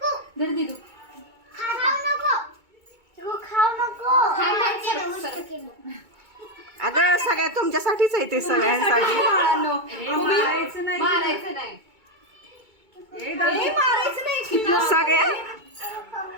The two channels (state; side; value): late; left; 2.2 ms